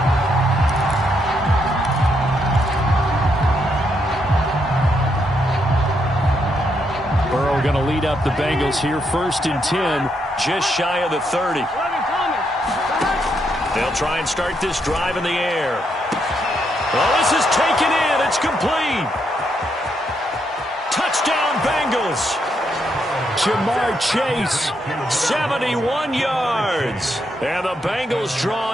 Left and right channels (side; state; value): both; normal; correlation 0.78